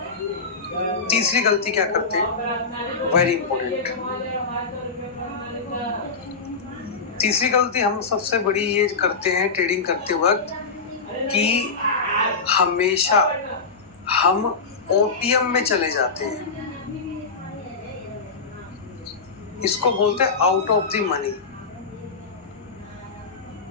तीसरी गलती क्या करते हैं, वेरी इंपॉर्टेंट, तीसरी गलती हम सबसे बड़ी ये करते हैं ट्रेडिंग करते वक्त, कि हमेशा हम ओटीएम में चले जाते हैं। इसको बोलते हैं आउट ऑफ द मनी।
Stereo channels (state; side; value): quieter; right; 4.6 dB